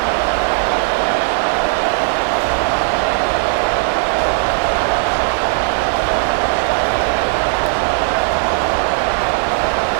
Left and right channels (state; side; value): silent; left; 68 dB below the other